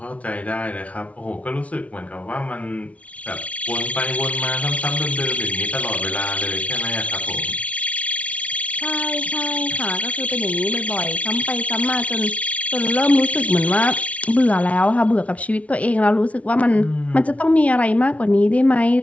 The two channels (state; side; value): late; right; 0.066 ms